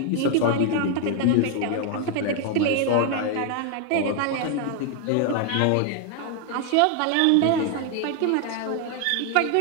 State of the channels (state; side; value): different; both; correlation 0.00